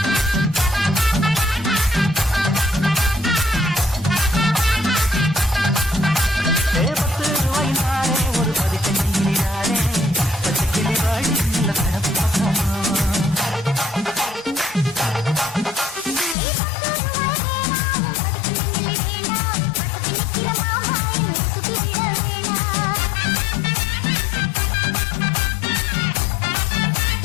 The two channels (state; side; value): drops out; right; at 16.4 s